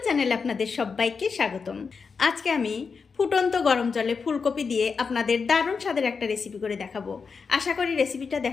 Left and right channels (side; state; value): right; quieter; 5.3 dB